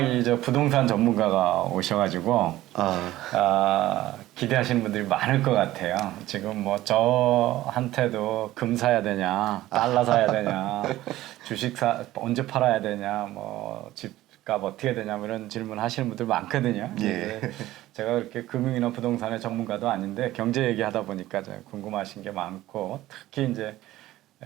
저 부동산 전문가가 오셔가지고 기대하시는 분들이 많을 것 같아요. 지금 뭐 저한테도 금 사야 되냐, 달러 사야 되냐, 주식 언제 팔아야 되냐, 뭐 집값 어떻게 해야 되냐, 뭐 이런 질문 하시는 분들 많거든요. 예. 제가 그렇게 금융이나 부동산의 전문가도 아닌데 경제 얘기하다 보니까 궁금하신 게 많고, 특히 이제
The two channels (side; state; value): left; quieter; 15.7 dB